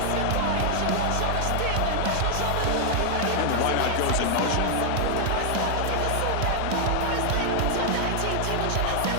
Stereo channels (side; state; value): both; different; correlation 0.00